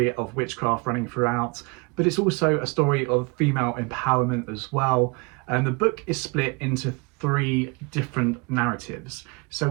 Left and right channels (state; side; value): quieter; left; 29.6 dB